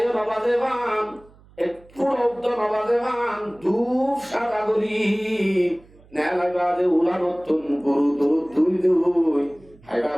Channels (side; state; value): right; noise; hum, 27 dB below the sound